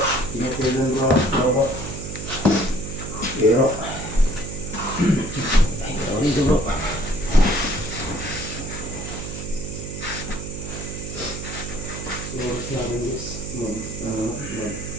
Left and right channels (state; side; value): noise; right; hum, 8 dB below the sound